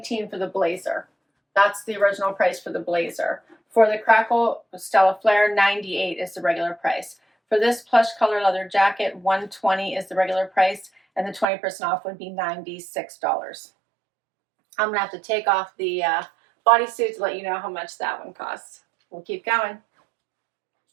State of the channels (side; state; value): left; drops out; at 11.5 s